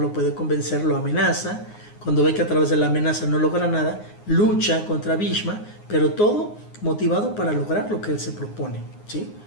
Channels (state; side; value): late; right; 9.6 ms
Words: puede convencer, lo amenaza. Cuando ve que a través de la amenaza no logra nada, lucha contra Bhishma, pero todo motivado para lograr lo que él se propone, ¿sí?